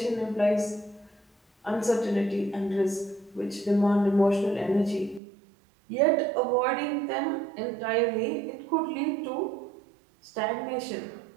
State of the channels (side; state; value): left; drops out; at 5.2 s